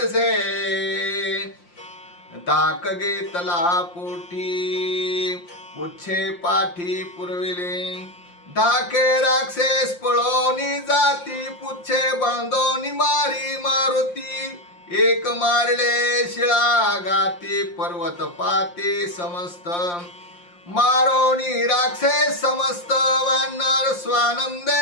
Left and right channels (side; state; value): right; late; 5.7 ms